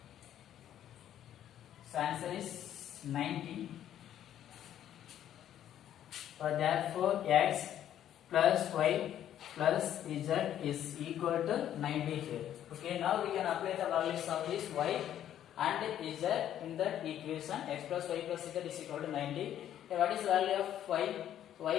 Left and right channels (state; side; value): quieter; right; 11.0 dB